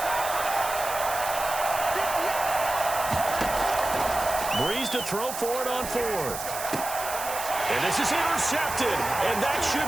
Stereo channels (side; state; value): right; noise; hiss, 8 dB below the sound